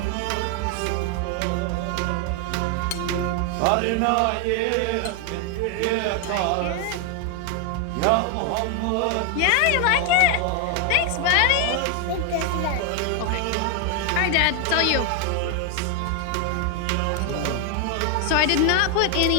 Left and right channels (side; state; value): both; different; correlation 0.01